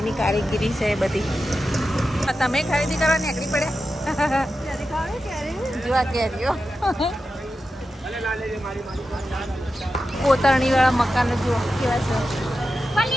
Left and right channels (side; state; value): both; normal; correlation 0.91